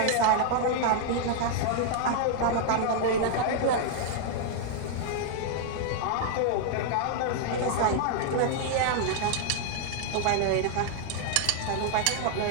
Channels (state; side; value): different; both; correlation 0.00